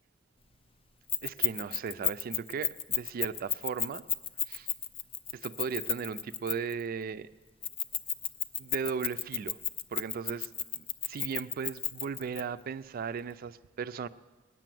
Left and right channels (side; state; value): both; normal; correlation 0.12